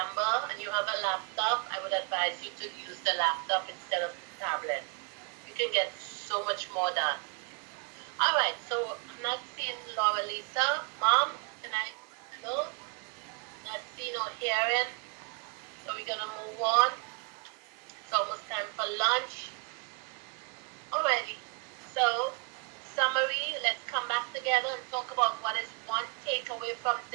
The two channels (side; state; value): left; quieter; 32.6 dB